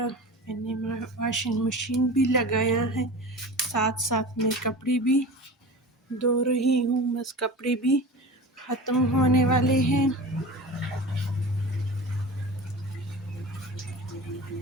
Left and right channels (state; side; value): normal; both; correlation 0.33